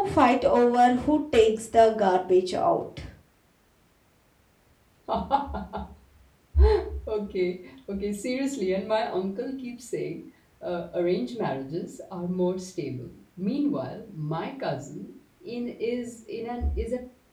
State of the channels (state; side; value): identical; both; correlation 1.00